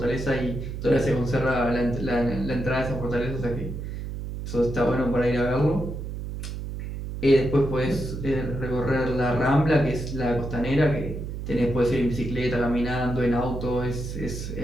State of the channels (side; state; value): right; noise; hum, 6 dB below the sound